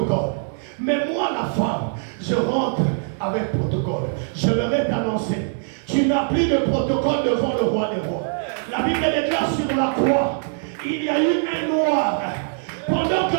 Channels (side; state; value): left; silent; 62 dB below the other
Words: Mais moi, la femme, je rentre avec protocole. Je vais t'annoncer. Tu n'as plus de protocole devant le roi des rois. La Bible déclare sur la croix, il y a eu un noir. Pendant